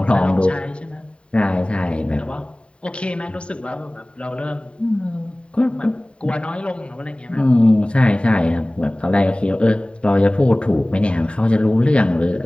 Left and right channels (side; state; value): right; late; 0.056 ms